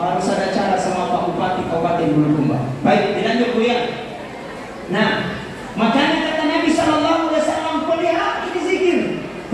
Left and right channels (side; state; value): both; identical; correlation 1.00